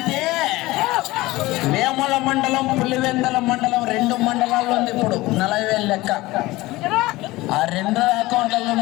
వేముల మండలం, పులివెందల మండలం 2 మండలాల్లో ఉంది ఇప్పుడు 40,000 లెక్క. ఆ 2 అకౌంట్ల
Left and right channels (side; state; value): right; quieter; 19.4 dB